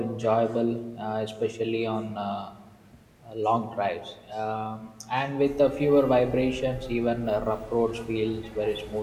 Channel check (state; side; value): identical; both; correlation 1.00